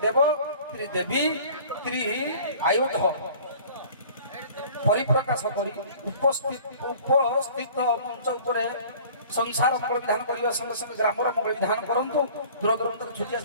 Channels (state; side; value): inverted; both; correlation -0.48